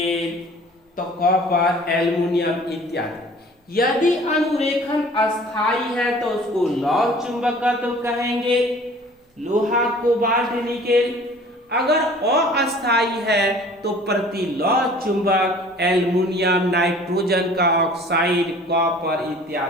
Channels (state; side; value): normal; both; correlation 0.49